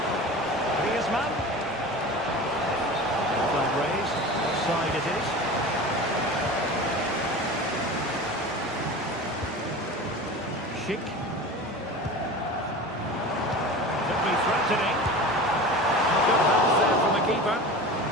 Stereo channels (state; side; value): normal; both; correlation 0.33